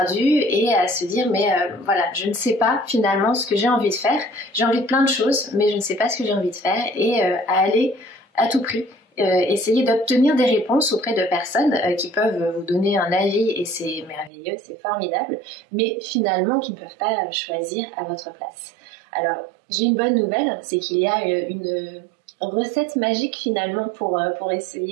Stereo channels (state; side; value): drops out; left; at 14.3 s